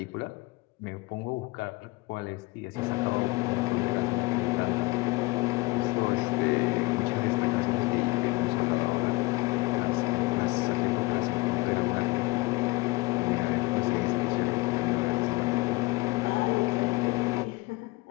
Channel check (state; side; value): quieter; right; 23.2 dB